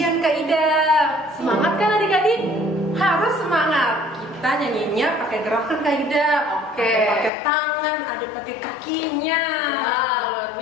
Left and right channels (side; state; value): right; drops out; at 7.3 s